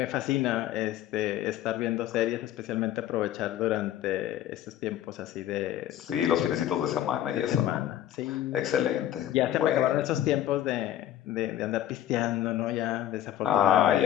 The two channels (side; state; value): right; quieter; 12.1 dB